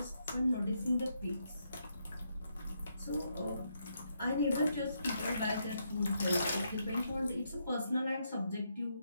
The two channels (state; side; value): inverted; both; correlation -0.79